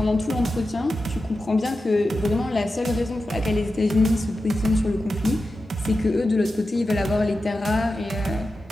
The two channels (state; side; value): normal; both; correlation 0.92